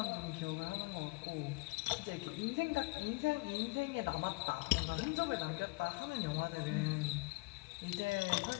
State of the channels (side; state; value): right; quieter; 25.9 dB